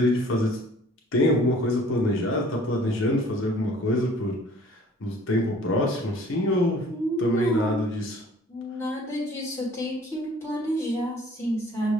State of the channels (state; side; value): normal; both; correlation 0.52